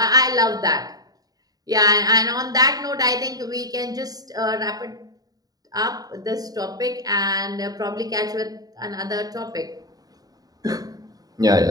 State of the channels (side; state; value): left; late; 0.18 ms